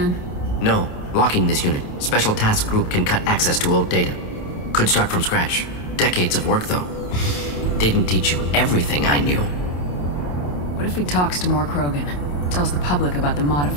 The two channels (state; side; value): late; right; 28 ms